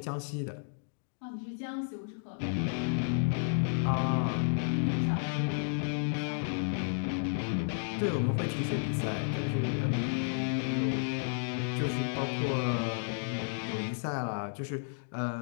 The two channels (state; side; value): silent; right; digital silence